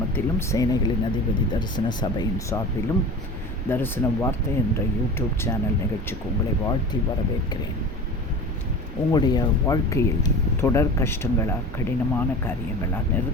சேனைகளின் அதிபதி தரிசன சபையின் சார்பிலும் தரிசன வார்த்தை என்ற யூடியூப் சேனல் நிகழ்ச்சிக்கு உங்களை வாழ்த்தி வரவேற்கிறேன். உங்களுடைய வாழ்க்கையில் தொடர் கஷ்டங்களா, கடினமான காரியங்களா,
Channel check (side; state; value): both; normal; correlation 0.35